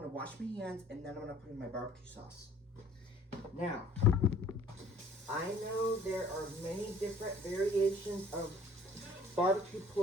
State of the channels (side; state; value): both; normal; correlation 0.53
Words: wash my hands, and then I'm gonna put in my barbecue sauce. Now, I know there are many different variations of barbecue